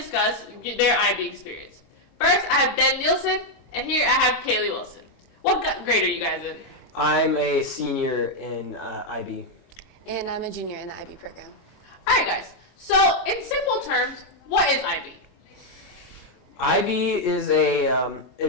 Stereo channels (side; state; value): both; normal; correlation 0.01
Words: their IB experience. First, I have Ben Nielsen, and here I have Kaylee Wilson. What grade are you guys in? I'm a senior in IB. And I'm a junior in the IB program. All right, guys. So, in simple terms, what is IB? IB is